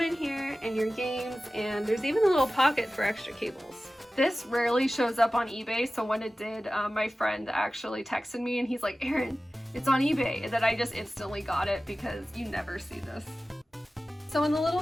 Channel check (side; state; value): both; normal; correlation 0.96